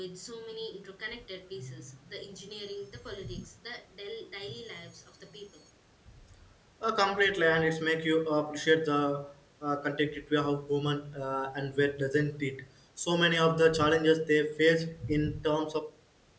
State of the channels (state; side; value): identical; both; correlation 1.00